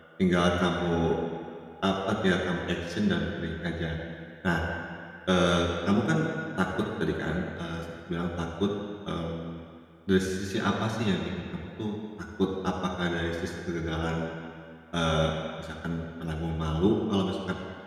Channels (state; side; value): identical; both; correlation 1.00